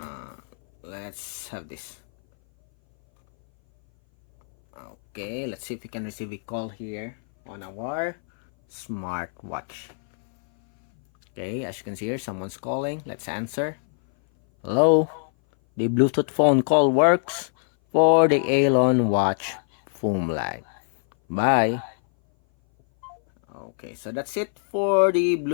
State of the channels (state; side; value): silent; right; 59 dB below the other